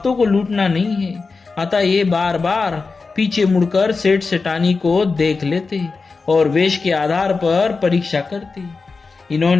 को लूटना नहीं है। अतः ये बार बार पीछे मुड़कर सेठ सेठानी को देख लेते और वेश के आधार पर परीक्षा करते।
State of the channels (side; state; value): right; quieter; 4.3 dB